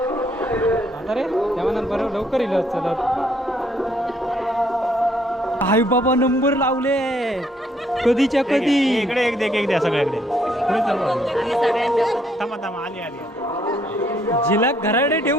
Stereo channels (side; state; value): both; normal; correlation 0.68